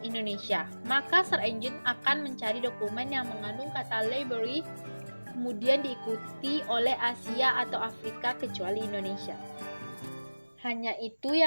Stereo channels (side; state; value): both; inverted; correlation -1.00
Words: Maka search engine akan mencari dokumen yang mengandung kata library, kemudian diikuti oleh Asia atau Afrika kecuali Indonesia. Hanya itu